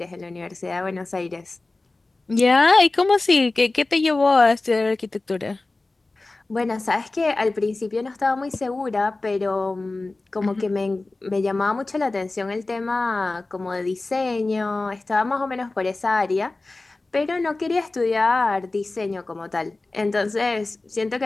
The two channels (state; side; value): quieter; right; 3.2 dB